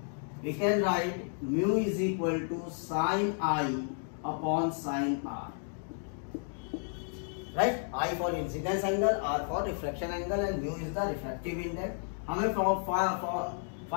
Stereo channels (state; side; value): silent; right; 56 dB below the other